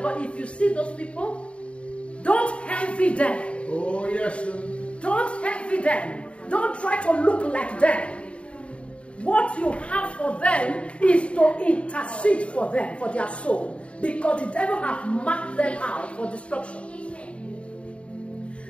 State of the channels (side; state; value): right; late; 0.060 ms